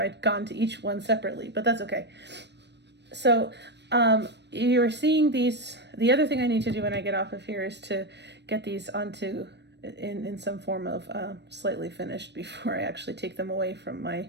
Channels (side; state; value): left; late; 0.50 ms